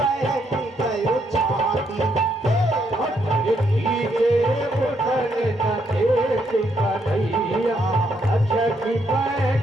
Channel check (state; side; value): normal; both; correlation 0.75